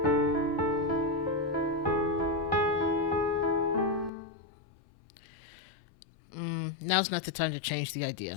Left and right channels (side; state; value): right; drops out; at 4.1 s